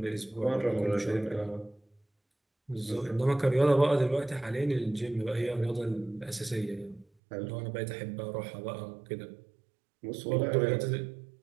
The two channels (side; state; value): left; drops out; at 7.1 s